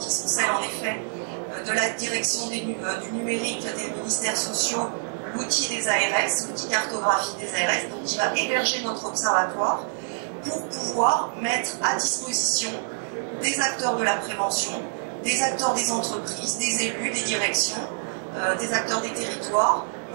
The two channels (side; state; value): left; silent; digital silence